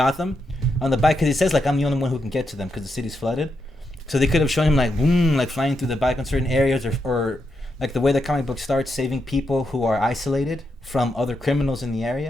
On the bike, because he says like I'm the only one who can get to them because the city's flooded. So they could have shown him like boom, like flying through the bike on certain areas, or like the way the comic book starts, saving people who are isolated from other criminals in the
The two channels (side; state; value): both; normal; correlation 0.83